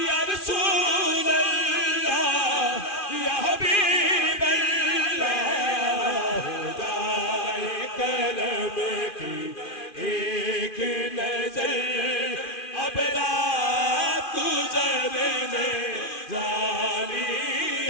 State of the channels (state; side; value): late; right; 2.5 ms